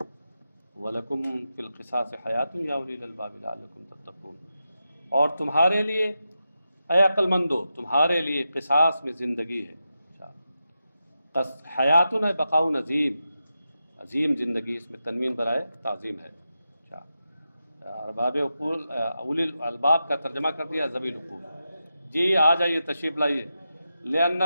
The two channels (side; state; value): both; inverted; correlation -0.89